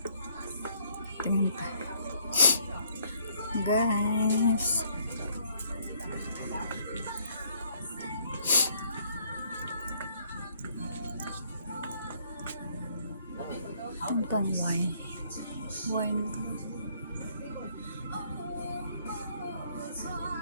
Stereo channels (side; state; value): both; inverted; correlation -0.64